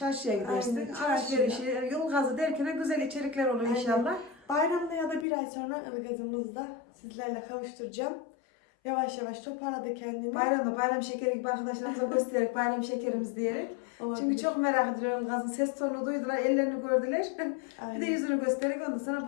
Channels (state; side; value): drops out; right; at 5.2 s